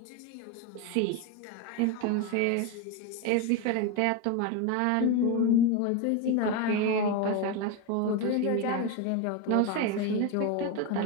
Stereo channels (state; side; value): different; both; correlation 0.03